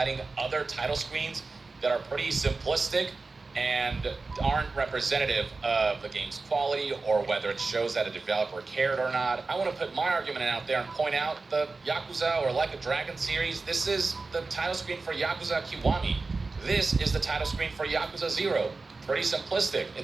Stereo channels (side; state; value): left; quieter; 3.8 dB